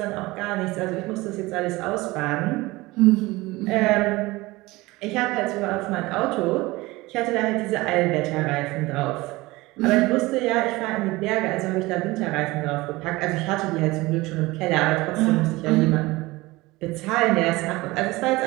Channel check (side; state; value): left; quieter; 20.9 dB